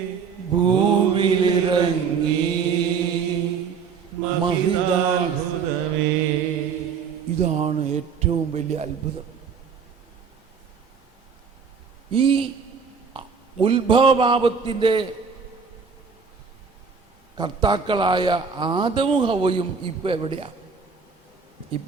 ഭൂവിലിറങ്ങി മഹിതാത്ഭുതമേ. ഇതാണ് ഏറ്റവും വലിയ അത്ഭുതം. ഈ ഉത്ഭവപാപത്തിന്റെ കർത്താക്കളായ ആദമും ഹവ്വയും ഇപ്പൊ എവിടെയാ?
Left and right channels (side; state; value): left; quieter; 5.9 dB